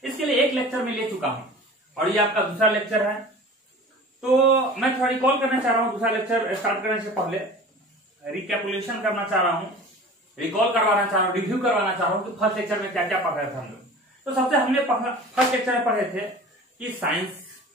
इसके लिए एक लेक्चर में ले चुका हूं और ये आपका दूसरा लेक्चर है। तो मैं थोड़ा रिकॉल करना चाह रहा हूं, दूसरा लेक्चर स्टार्ट करने से पहले रिकैपुलेशन करना चाह रहा हूं, रिकॉल करवाना चाह रहा हूं, रिव्यू करवाना चाह रहा हूं कि फर्स्ट लेक्चर में क्या क्या पढ़ रहे थे हम लोग। तो सबसे हमने फर्स्ट लेक्चर में पढ़े थे कि साइंस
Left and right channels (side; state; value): both; normal; correlation 0.40